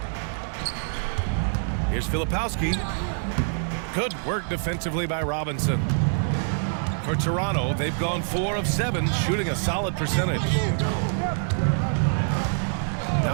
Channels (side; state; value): left; silent; digital silence